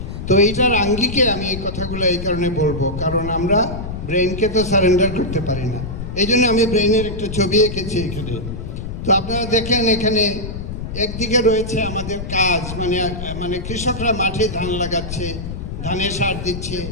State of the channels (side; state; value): left; noise; rumble, 7 dB below the sound